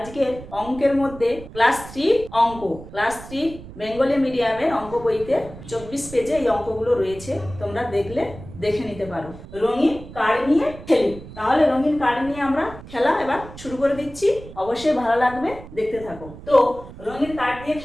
অঙ্কের মধ্যে ক্লাস 3 অঙ্ক, ক্লাস 3 বেঙ্গলি মিডিয়ামের অঙ্ক বইতে 24 পেজে এই অঙ্কগুলো রয়েছে, তোমরা দেখে নিতে পারো। রঙিন কার্ড নিয়ে খেলি। তাহলে রঙিন কার্ড নিয়ে আমরা খেলা এবার শুরু করে দিচ্ছি, অবশ্যই ভালো লাগবে, দেখতে থাকো। তো রঙিন কার্ড দিয়ে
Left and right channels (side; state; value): right; noise; rumble, 15 dB below the sound